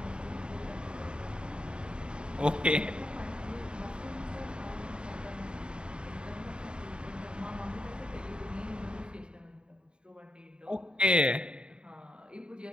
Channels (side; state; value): left; late; 0.051 ms